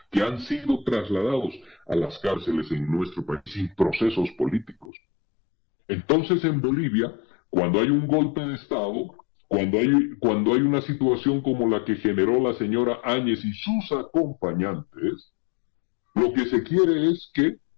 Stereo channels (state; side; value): drops out; right; at 4.9 s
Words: que han sido trasladados a las cárceles en nuestro país sin procesos políticos. Entonces en Bolivia, cuando hay un golpe de Estado, cuando hay una situación como la que generó la señora Áñez y sus acompañantes, lo que se quiere es que